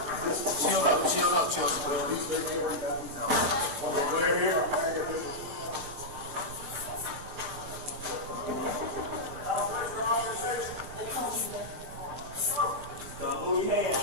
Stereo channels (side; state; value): left; late; 23 ms